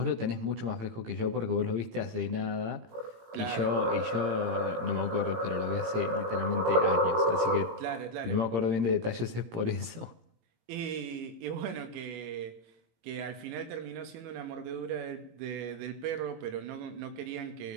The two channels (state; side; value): late; left; 18 ms